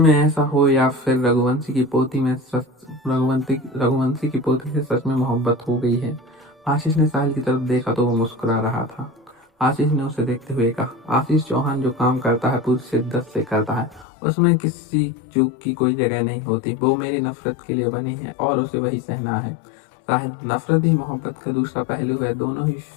ऐसा हो या फिर रघुवंशी की पोती से सच में मोहब्बत हो गई है? आशीष ने साहिल की तरफ देखा तो वो मुस्कुरा रहा था। आशीष ने उसे देखते हुए कहा, आशीष चौहान जो काम करता है पूरी शिद्दत से करता है। उसमें किसी चूक की कोई जगह नहीं होती। वो मेरी नफरत के लिए बनी है और उसे वही सहना है। साहिल, नफरत ही मोहब्बत का दूसरा पहलू है। दोनों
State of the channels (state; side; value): drops out; right; at 14.1 s